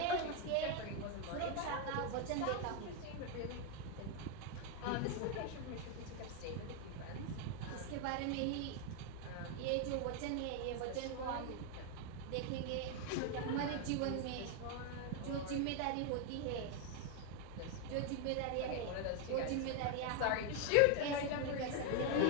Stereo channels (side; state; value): both; different; correlation 0.01